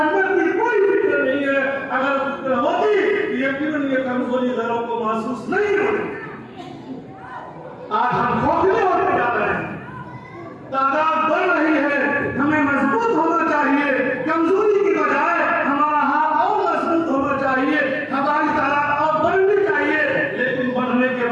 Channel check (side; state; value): both; identical; correlation 1.00